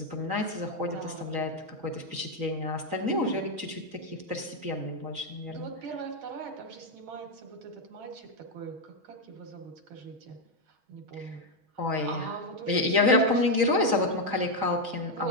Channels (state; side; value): late; left; 6.3 ms